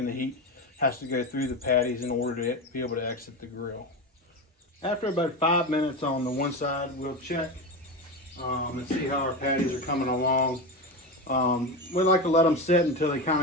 the heat has to go through the patties in order to be able to exit the grill. After about 5 minutes on the one side, we'll check and see how our patties are coming along. We like to let them sit until they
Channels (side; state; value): both; normal; correlation 0.20